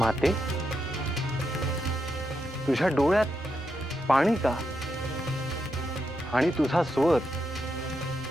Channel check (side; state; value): both; normal; correlation 0.84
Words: तुझ्या डोळ्यात पाणी का? आणि तुझा स्वर